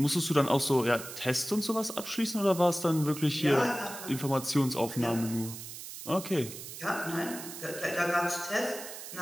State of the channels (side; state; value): right; noise; hiss, 11 dB below the sound